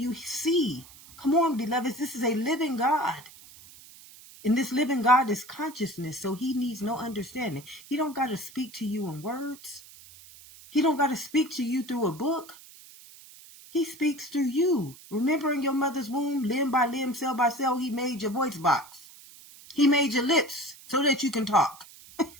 see? Come on, beloveds, this is a living God. And this living God is consciousness, so he needs no understanding. He don't got to speak to you in words. He don't got to speak to you through a book. He speaks through you. Remember in your mother's womb, limb by limb, cell by cell, he made your voice box. He made your lips so that you can talk.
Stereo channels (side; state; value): right; noise; hiss, 20 dB below the sound